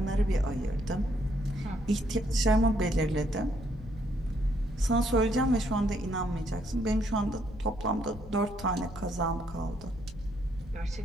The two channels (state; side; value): noise; left; rumble, 16 dB below the sound